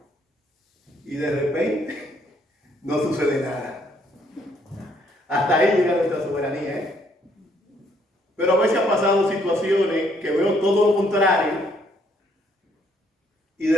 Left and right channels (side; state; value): both; normal; correlation 0.68